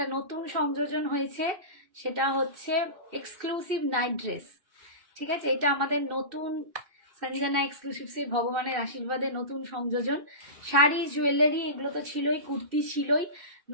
নতুন সংযোজন হয়েছে, সেটা হচ্ছে এক্সক্লুসিভ নাইট ড্রেস, ঠিক আছে? এটা আমাদের নতুন সঞ্জনা এক্সক্লুসিভসের ভগবানের আশীর্বাদে নতুন সংযোজন, শাড়ি জুয়েলারি এগুলো তো ছিলই, কুর্তি ছিলই,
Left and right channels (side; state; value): left; late; 2.7 ms